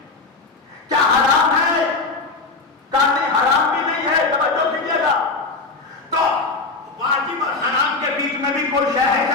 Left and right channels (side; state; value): right; quieter; 3.8 dB